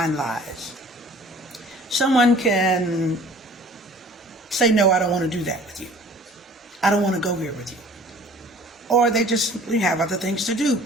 lies. Someone can say, no, I don't want to do that with you. I don't want to go here with you. Or they just simply have other things to do,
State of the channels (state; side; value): normal; both; correlation 0.49